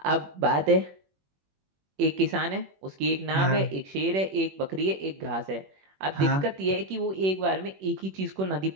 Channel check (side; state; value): left; late; 21 ms